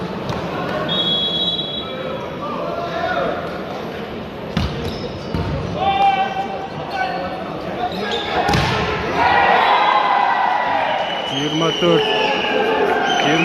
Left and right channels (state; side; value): identical; both; correlation 1.00